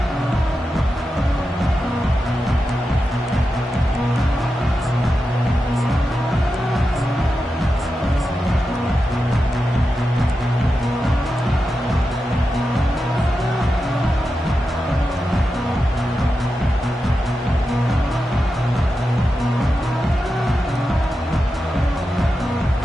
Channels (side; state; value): both; normal; correlation 0.90